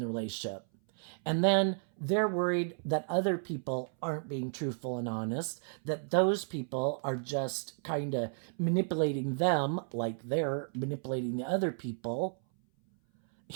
relationship. And then they're worried that other people aren't being truthful and honest, that those people are just kind of manipulating them like they're manipulating the other people,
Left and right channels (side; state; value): left; silent; 56 dB below the other